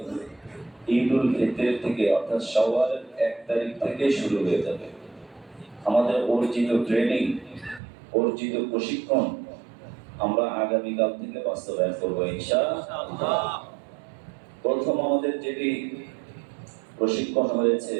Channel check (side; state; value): left; drops out; at 7.8 s